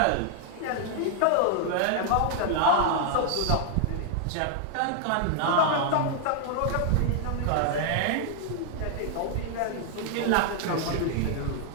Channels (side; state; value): both; different; correlation 0.00